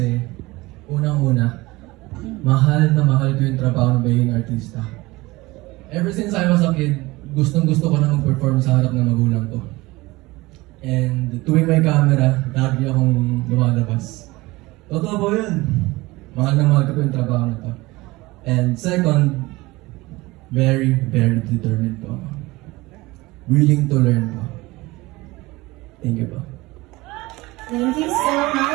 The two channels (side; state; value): left; quieter; 21.0 dB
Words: unang-una, mahal na mahal ko yung trabaho ng magiging artista. Ever since I was a kid, gustong-gusto ko na mag-perform sa harap ng magulang ko. And tuwing may camera, lagi akong lumalabas. Totoo po yun. Mahal na mahal ko yung trabaho na to. And second, very, very determined po. Willing to learn po. Thank you po. Thank you so